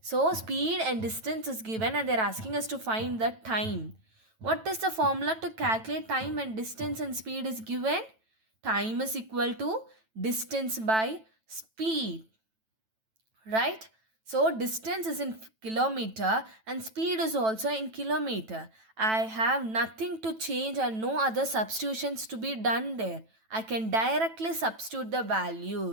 So speed and distance is given and they're asking us to find the time. What is the formula to calculate time when distance and speed is given? Time is equal to distance by speed. Right? So distance is in kilometer and speed is also in kilometer. I have nothing to change and no other substitutions to be done there. I can directly substitute the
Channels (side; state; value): left; late; 9.1 ms